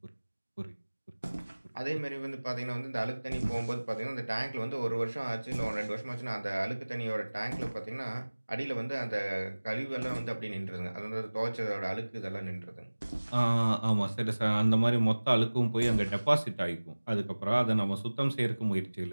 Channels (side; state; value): both; inverted; correlation -1.00